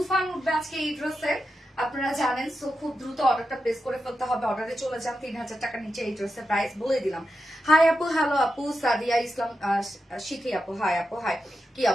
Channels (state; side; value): normal; both; correlation 0.89